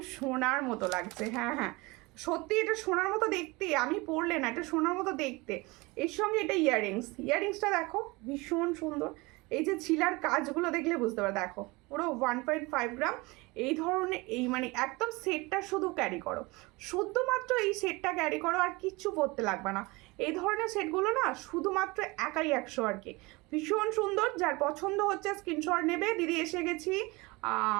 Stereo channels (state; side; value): quieter; left; 24.1 dB